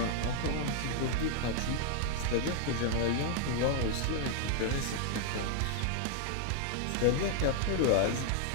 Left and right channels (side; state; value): both; different; correlation 0.00